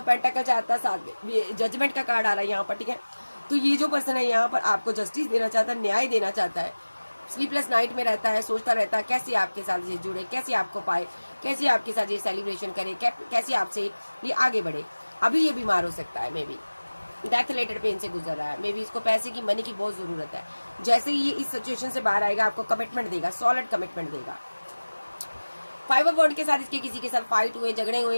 पेंटाकल चाहता है, साथ जजमेंट का कार्ड आ रहा है यहाँ पर, ठीक है। तो ये जो पर्सन है यहाँ पर आपको जस्टिस देना चाहता है, न्याय देना चाहता है। स्लीपलेस नाइट में रहता है, सोचता रहता है कैसे आपके साथ ये जुड़े, कैसे आपको पाए, कैसे आपके साथ ये सेलिब्रेशन करे, कैसे आपसे ये आगे बढ़े। अभी ये बीमार हो सकता है, may be death related pen से गुजर रहा है, मे बी इसको पैसे की, मनी की बहुत जरूरत है। जैसे ही ये इस सिचुएशन से बाहर आएगा, आपको कमिटमेंट देगा, सॉलिड कमिटमेंट देगा। 5 ऑफ वॉन्ड के साथ इसके किसी के साथ फाइट हुए, झगड़े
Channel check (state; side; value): inverted; both; correlation -1.00